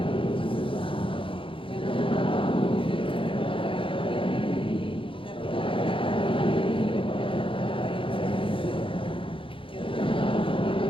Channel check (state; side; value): late; right; 0.25 ms